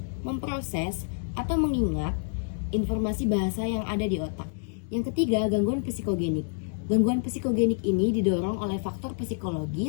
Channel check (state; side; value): silent; right; digital silence